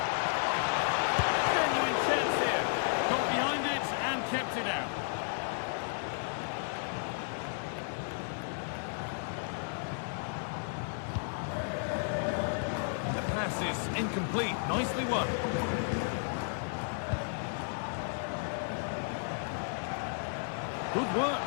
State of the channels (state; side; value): silent; right; digital silence